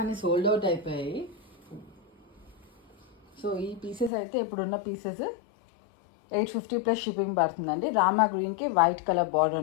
అన్నీ సోల్డ్ అవుట్ అయిపోయాయి. సో ఈ పీసెస్ అయితే ఇప్పుడున్న పీసెస్ 850 ప్లస్ షిప్పింగ్ పడుతుందండి. రామా గ్రీన్కి వైట్ కలర్ బార్డర్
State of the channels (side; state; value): right; drops out; at 4.1 s